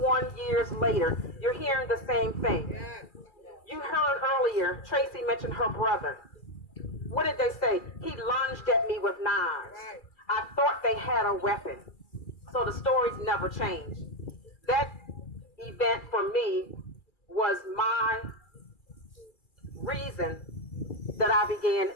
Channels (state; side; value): late; right; 2.4 ms